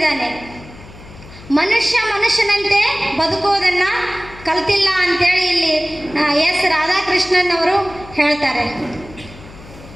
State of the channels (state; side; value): noise; left; hum, 19 dB below the sound